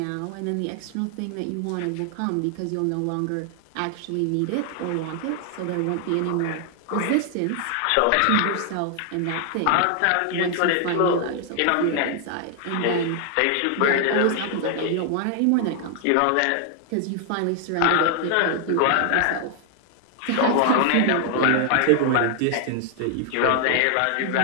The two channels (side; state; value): both; different; correlation 0.00